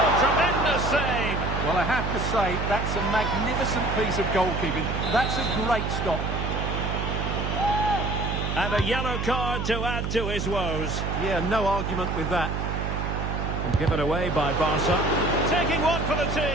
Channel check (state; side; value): noise; right; hum, 2 dB below the sound